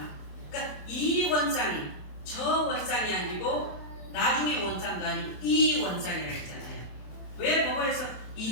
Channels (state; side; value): late; right; 27 ms